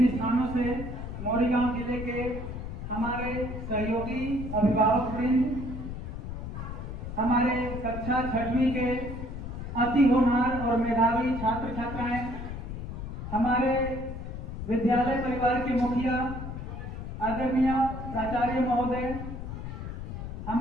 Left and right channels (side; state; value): left; noise; rumble, 7 dB below the sound